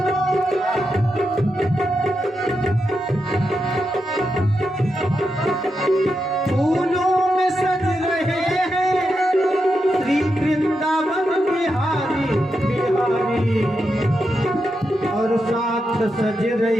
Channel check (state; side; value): normal; both; correlation 0.86